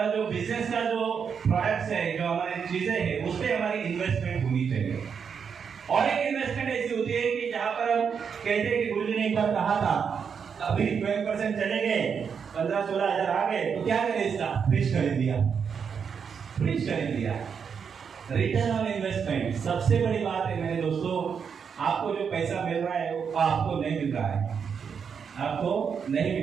जो बिजनेस का जो प्रोडक्ट्स है, जो हमारी चीजें हैं, उस पर हमारी इन्वेस्टमेंट होनी चाहिए। और एक इन्वेस्टमेंट ऐसी होती है कि जहां पर हम कहते हैं कि गुरुजी ने एक बार कहा था, अभी 12% चले गए, 15-16,000 आ गए, तो क्या करें? इसका फ्रिज खरीद दिया, फ्रिज खरीद दिया। रिटर्न ऑन इन्वेस्टमेंट सबसे बड़ी बात है मेरे दोस्तों। आपको जो पैसा मिल रहा है वो आपको नहीं मिल रहा है, आपको नहीं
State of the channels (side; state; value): left; quieter; 6.6 dB